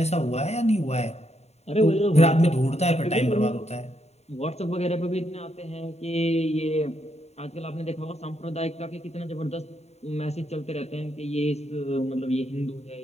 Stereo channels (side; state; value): right; late; 0.31 ms